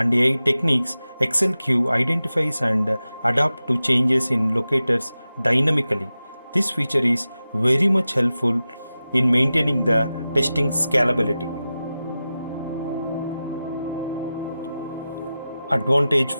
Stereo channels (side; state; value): both; inverted; correlation -0.94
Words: AI techniques, AccelQ identifies and adapts to changes in locators dynamically. This feature is very much helpful in maintaining the testing scalability. Advantage